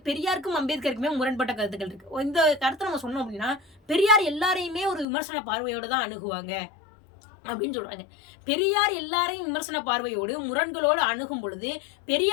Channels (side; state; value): right; drops out; at 5.1 s